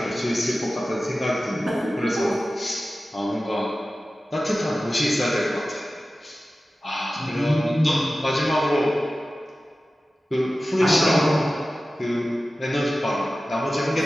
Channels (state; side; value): normal; both; correlation 0.95